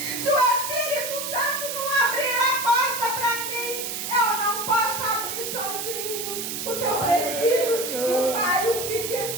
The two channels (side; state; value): right; noise; hiss, 4 dB below the sound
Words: o Espírito Santo não abrir a porta para mim, eu não posso abrir sozinho, porque eu preciso que o Pai, o Filho e o